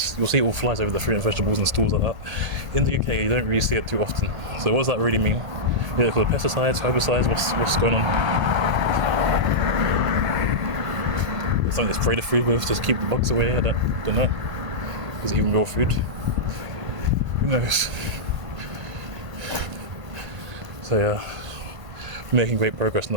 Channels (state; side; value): late; left; 1.5 ms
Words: you'll see all flies over the fruit and vegetables and stores like that. In the UK, you don't really see it too often. So what does that really mean? Yeah, for the pesticides, herbicides, what's going on? It's something to spray the food with, just keep the bugs away, I don't know. Is it even real food? Who knows? So yeah, we're making great progress